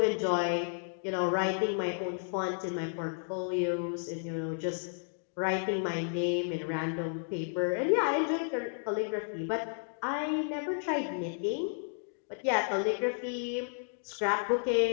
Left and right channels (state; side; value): silent; right; digital silence